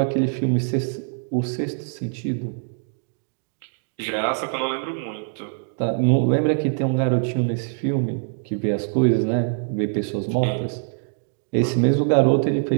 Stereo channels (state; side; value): silent; left; 63 dB below the other